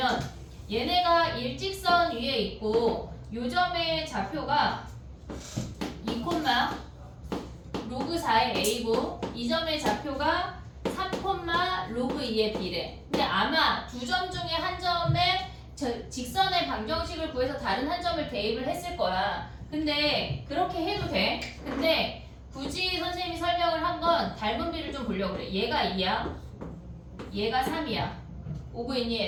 얘네가 일직선 위에 있고 요 점의 좌표가 2, 로그 4의 a고 이 점의 좌표가 3, 로그 2의 b래. 근데 아마 두 점 중에 한 점에 직선의 방정식을 구해서 다른 한 점을 대입을 했을 거야. 근데 그렇게 해도 돼. 근데 굳이 선생님이 설명을 한 건 닮은 비를 좀 보려고 그래. 얘가 2야. 얘가 3이야. 오고 있니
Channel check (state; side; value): identical; both; correlation 1.00